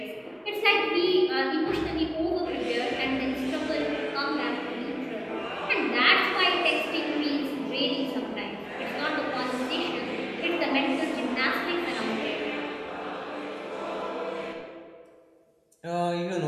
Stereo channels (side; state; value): both; identical; correlation 1.00